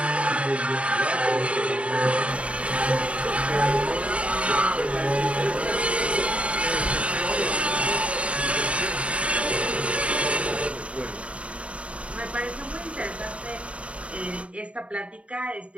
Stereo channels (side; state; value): left; late; 0.062 ms